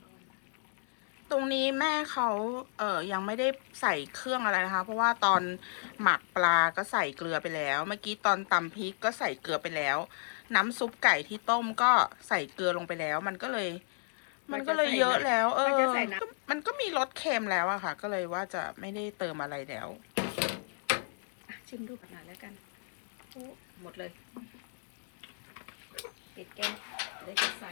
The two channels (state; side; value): silent; right; digital silence